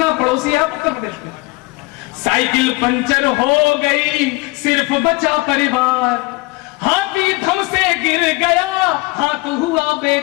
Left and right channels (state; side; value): quieter; right; 23.9 dB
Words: पड़ोसी है उत्तर प्रदेश में। साइकिल पंचर हो गई, सिर्फ बचा परिवार। हाथी धम से गिर गया, हाथ हुआ